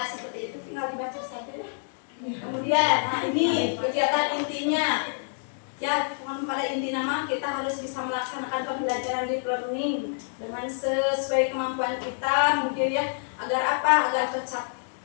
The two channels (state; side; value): silent; right; digital silence